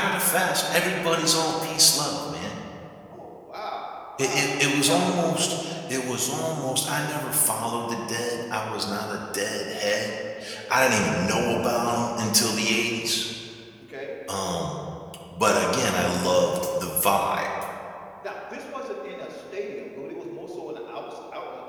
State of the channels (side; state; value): both; identical; correlation 1.00